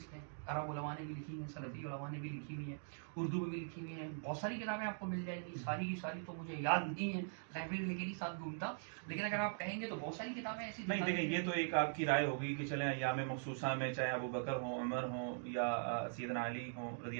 نے, عرب علماء نے بھی لکھی ہیں, سلفی علماء نے بھی لکھی ہوئی ہیں, اردو میں بھی لکھی ہوئی ہیں. بہت ساری کتابیں آپ کو مل جائیں گی, ساری کی ساری تو مجھے یاد نہیں ہے, لائبریری لے کے نہیں ساتھ گھومتا, لیکن اگر آپ کہیں گے تو بہت ساری کتابیں ایسی نہیں. دیکھیں یہ تو ایک آپ کی رائے ہوگی کہ چلیں ایام مخصوصہ میں چاہے ابو بکر ہوں, عمر ہوں یا سیدنا علی ہوں رضی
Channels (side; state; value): left; silent; digital silence